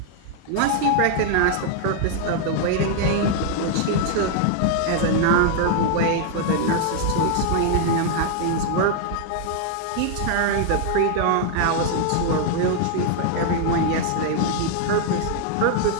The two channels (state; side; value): different; both; correlation 0.00